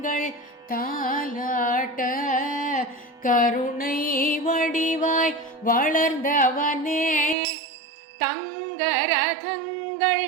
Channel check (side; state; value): left; drops out; at 7.4 s